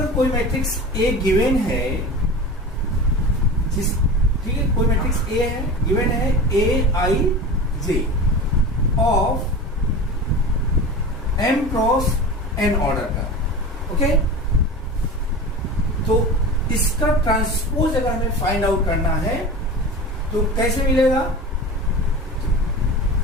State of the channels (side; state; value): both; normal; correlation 0.32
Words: कोई मैट्रिक्स A गिवन है, जिस ठीक है, कोई मैट्रिक्स A है, गिवन है Aij of M cross N order का। ओके, तो इसका ट्रांसपोज अगर हमें फाइंड आउट करना है तो कैसे मिलेगा?